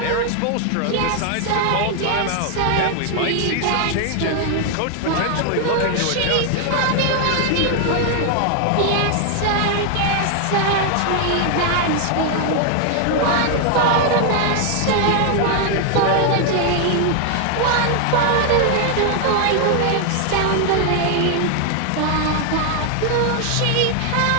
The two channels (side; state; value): both; different; correlation 0.00